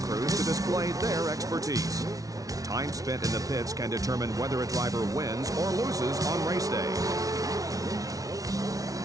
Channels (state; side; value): late; left; 0.18 ms